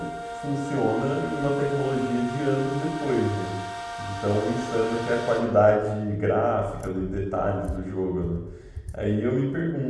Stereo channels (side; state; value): both; identical; correlation 1.00